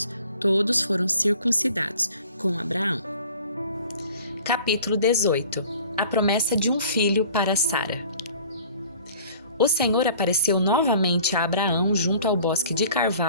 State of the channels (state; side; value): inverted; both; correlation -0.49